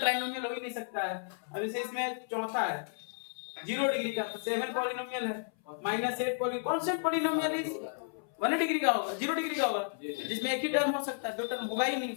हो ही नहीं सकता है। अब जैसे इसमें चौथा है 0 डिग्री का, तो 7 पॉलिनोमियल है, -8 कौन से पॉलिनोमियल है 1 डिग्री का होगा, 0 डिग्री का होगा जिसमें एक ही टर्म हो सकता है, 2 टर्म होगा ही नहीं।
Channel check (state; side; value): silent; right; 56 dB below the other